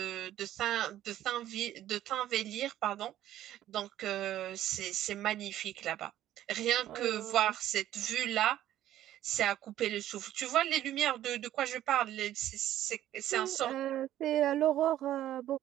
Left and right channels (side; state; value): left; quieter; 12.7 dB